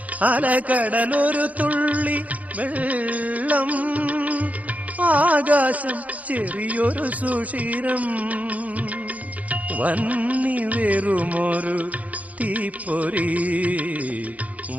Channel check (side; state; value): left; late; 0.072 ms